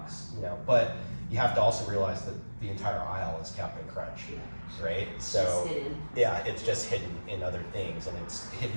but you have to also realize that the entire aisle is Captain Crunch, right? So, it's just hidden in other things, and it's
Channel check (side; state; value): both; inverted; correlation -1.00